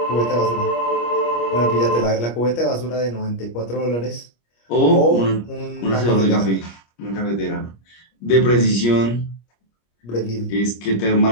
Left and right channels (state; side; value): late; right; 25 ms